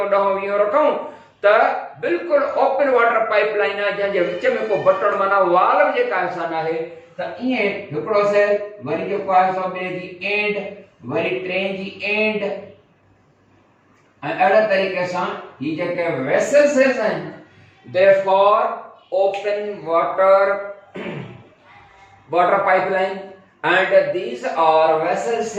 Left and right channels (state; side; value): identical; both; correlation 1.00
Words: ॾहों वीहों रखूं त बिल्कुलु ओपन वाटर पाइप लाइन आहे जंहिंजे विच में को बटण माना वॉल बि जेका असां न आहे त ईअं हिकिड़ो सेल वरी जेको आहे सो ॿिए जी एंड वरी टे जी एंड ऐं अहिड़े तरीक़े सां ही जेके वेसल सेल्स आहिनि therefore open water pipeline and these are vessel